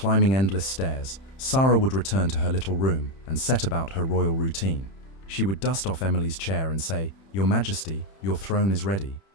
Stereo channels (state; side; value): late; right; 31 ms